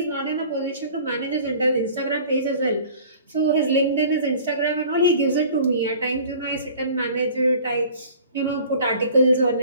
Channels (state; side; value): inverted; both; correlation -0.47